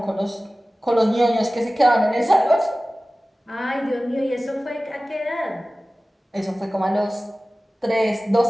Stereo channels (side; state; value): both; normal; correlation 0.97